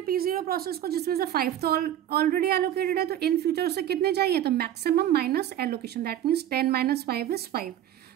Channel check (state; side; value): quieter; left; 11.5 dB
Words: P0 प्रोसेस को, जिसमें से 5 तो ऑलरेडी एलोकेटेड है. तो इन फ्यूचर उसे कितने चाहिए? तो maximum minus allocation, that means 10 minus 5 is 5.